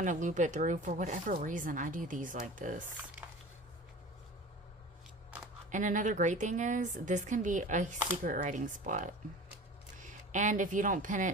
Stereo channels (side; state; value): both; normal; correlation 0.38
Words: to loop it through. For whatever reason, I do these like this. And another great thing is, this can be a secret writing spot. And if you don't pin